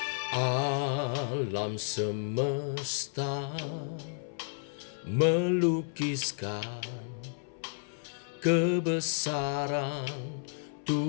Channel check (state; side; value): silent; right; 56 dB below the other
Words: Alam semesta melukiskan kebesaran